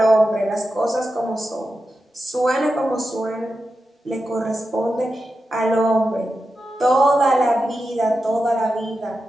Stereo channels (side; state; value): both; normal; correlation 0.90